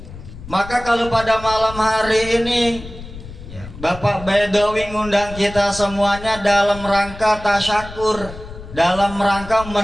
Maka kalau pada malam hari ini Bapak Bedowi ngundang kita semuanya dalam rangka tasyakur, dalam rangka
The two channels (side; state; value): left; noise; rumble, 14 dB below the sound